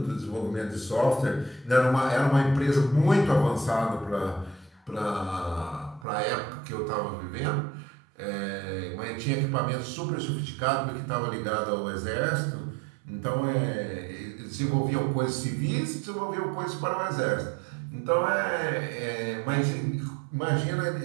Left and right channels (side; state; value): left; drops out; at 6.1 s